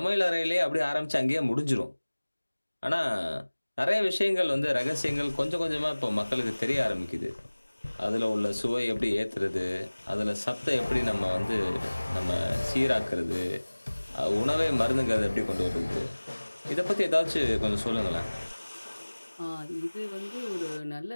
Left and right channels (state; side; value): inverted; both; correlation -1.00